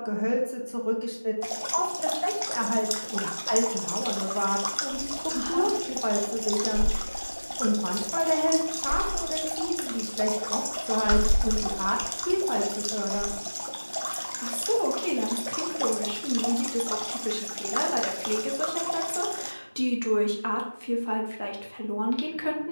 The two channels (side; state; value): both; inverted; correlation -1.00